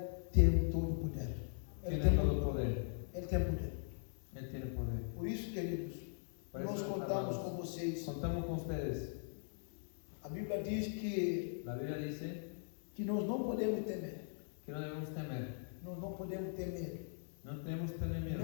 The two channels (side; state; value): right; silent; 51 dB below the other